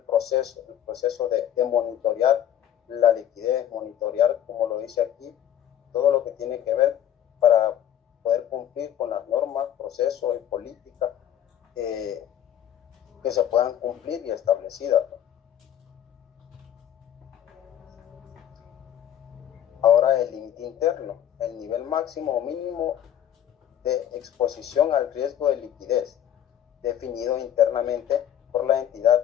de monitorear la liquidez, monitorear, como lo dice aquí, todo lo que tiene que ver para poder cumplir con las normas, procesos y políticas que se puedan cumplir y establecidas. Ahora el límite interno, el nivel máximo o mínimo de exposición al riesgo de liquidez, definido internamente por la entidad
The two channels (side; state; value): right; quieter; 10.6 dB